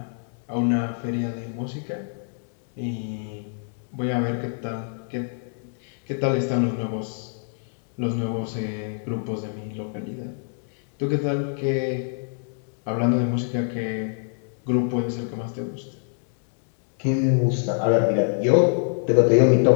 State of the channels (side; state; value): right; silent; 61 dB below the other